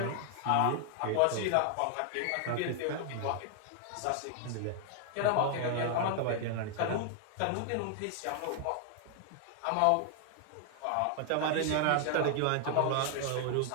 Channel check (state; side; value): different; both; correlation 0.00